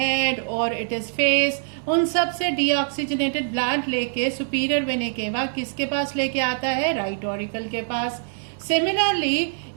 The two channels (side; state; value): left; silent; 63 dB below the other